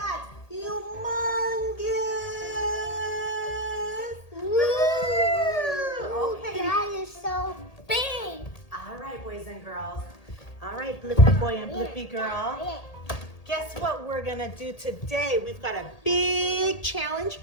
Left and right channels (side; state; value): right; late; 1.8 ms